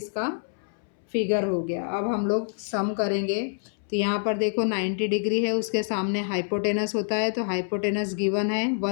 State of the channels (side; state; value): right; silent; 60 dB below the other